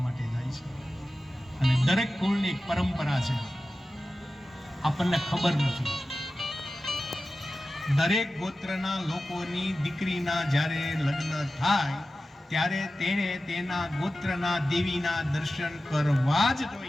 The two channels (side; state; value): both; normal; correlation 0.94